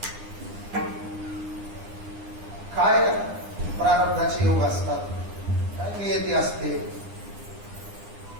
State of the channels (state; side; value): late; left; 9.8 ms